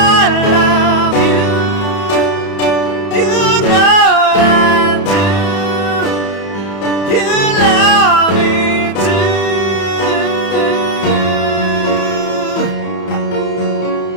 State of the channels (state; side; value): late; right; 31 ms